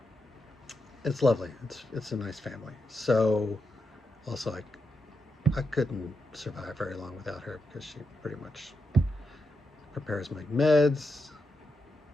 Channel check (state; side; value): normal; both; correlation 0.85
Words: it's lovely. It's a nice family. So also I couldn't survive very long without her because she pretty much prepares my meds.